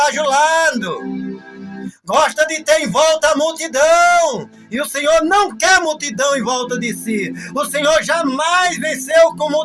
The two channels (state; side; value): identical; both; correlation 1.00